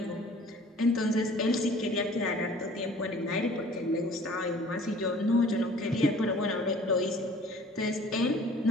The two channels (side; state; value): both; normal; correlation 0.50